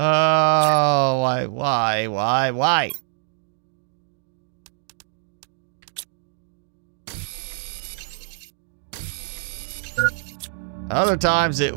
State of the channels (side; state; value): left; silent; digital silence